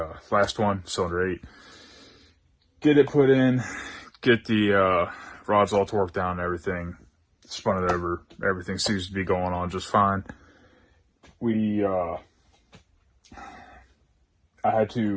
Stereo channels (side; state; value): both; identical; correlation 1.00